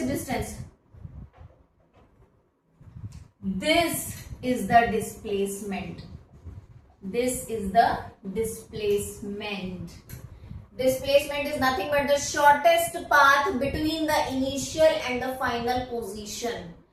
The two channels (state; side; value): identical; both; correlation 1.00